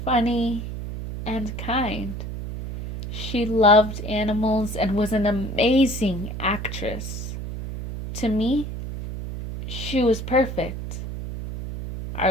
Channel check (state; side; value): noise; right; hum, 7 dB below the sound